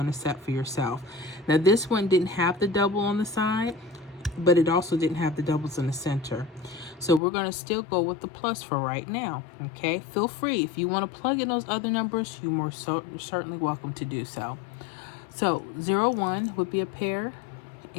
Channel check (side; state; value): right; drops out; at 7.2 s